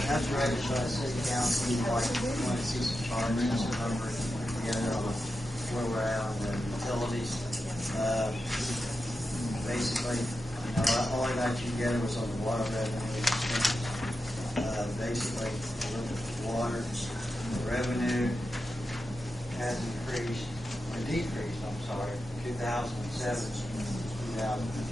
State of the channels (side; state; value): both; normal; correlation 0.90